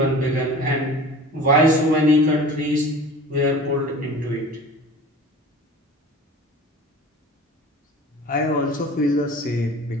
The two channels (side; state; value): both; normal; correlation 0.40